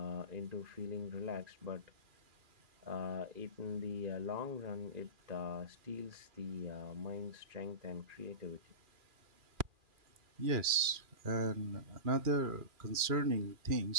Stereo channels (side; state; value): left; late; 2.4 ms